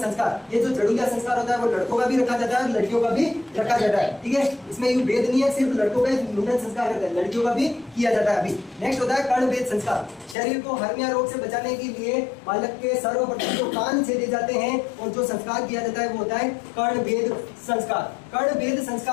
ये जो जड़ूलिया संस्कार होता है वो लड़कों का भी रखा जाता है और लड़कियों का भी रखा जाता है, ठीक है। इसमें यूं भेद नहीं है, सिर्फ लड़कों का मुंडन संस्कार करते हैं, लड़कियों का भी किया जाता है। अभी नेक्स्ट होता है कर्ण वेद संस्कार। शरीर को हर्निया रोग से बचाने के लिए बालक के सर्वप्रथम जो कान छेदे जाते हैं और जो संस्कार किया जाता है वो होता है कर्ण वेद संस्कार। कर्ण वेद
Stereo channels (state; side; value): drops out; right; at 10.4 s